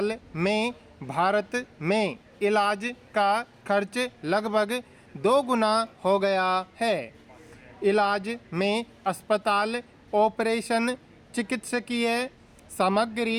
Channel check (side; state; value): both; identical; correlation 1.00